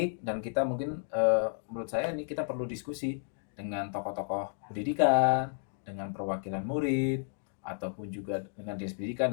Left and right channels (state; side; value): silent; right; digital silence